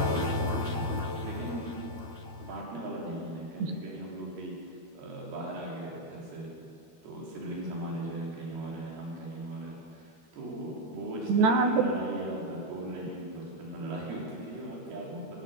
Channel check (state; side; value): late; left; 13 ms